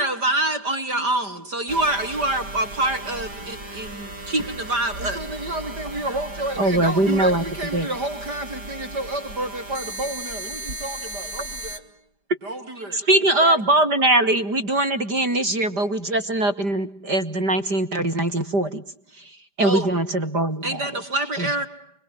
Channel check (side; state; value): left; late; 5.0 ms